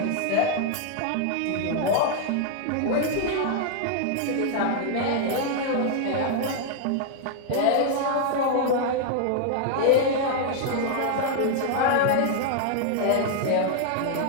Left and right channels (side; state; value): both; different; correlation 0.00